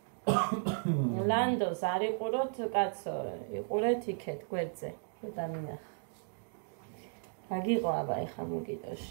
ლანდოს არ იყუროთ, კაცო, იყურეთ იქეთ გვერდზე, რომ დამინახა. რაგიყო აბა ეხა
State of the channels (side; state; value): left; silent; digital silence